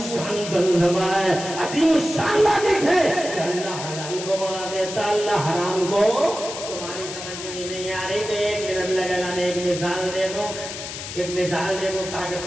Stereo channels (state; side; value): noise; left; hiss, 9 dB below the sound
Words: فلسفہ ہے، عظیم الشان لاجک ہے کہ اللہ حلال کو بڑھا دیتا ہے، اللہ حرام کو. نہیں آ رہی تو 1 منٹ لگے گا. میں ایک مثال دے دوں تاکہ